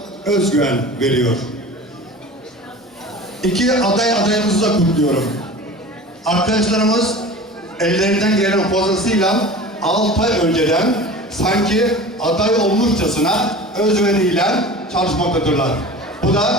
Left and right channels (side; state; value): both; normal; correlation 0.37